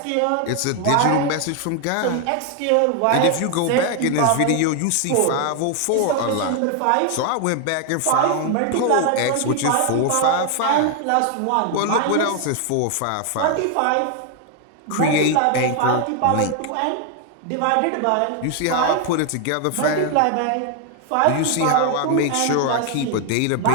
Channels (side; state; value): both; different; correlation 0.01